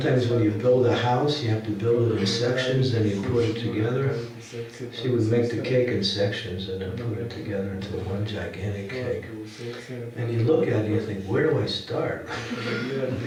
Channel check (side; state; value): both; identical; correlation 1.00